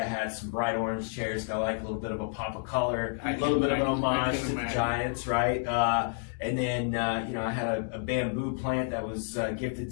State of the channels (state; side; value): silent; right; 58 dB below the other